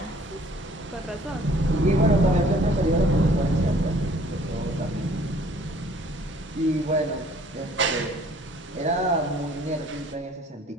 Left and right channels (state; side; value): normal; both; correlation 0.56